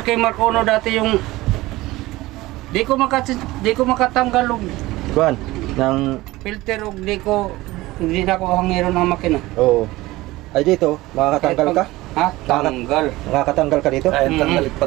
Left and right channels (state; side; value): quieter; left; 18.9 dB